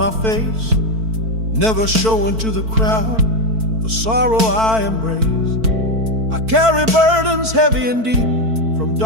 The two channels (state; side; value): late; left; 4.5 ms